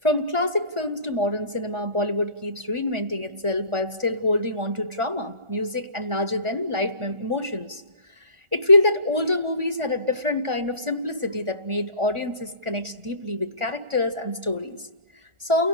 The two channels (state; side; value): late; left; 1.4 ms